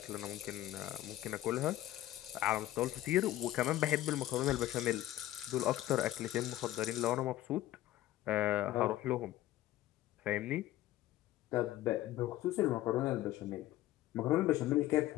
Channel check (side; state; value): right; quieter; 14.8 dB